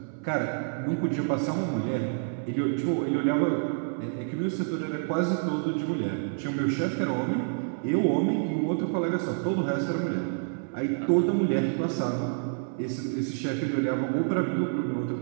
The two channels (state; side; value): silent; left; 59 dB below the other